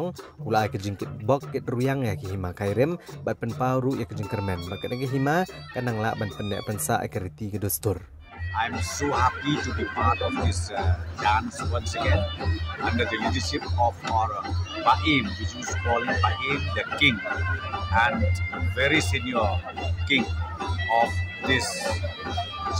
ulai kejingkit bok ket ruyang ya ki hima kairim bat penpauru ya kejing kermen ba kadang hima kanang la ban pendek pensa akriti ke dostur. I'm so happy to be part of this dance once again under the leadership of our Baim, which is called Baim the King and very senior king of this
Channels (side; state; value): both; identical; correlation 1.00